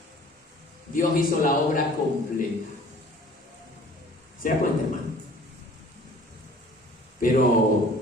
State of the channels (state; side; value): normal; both; correlation 0.50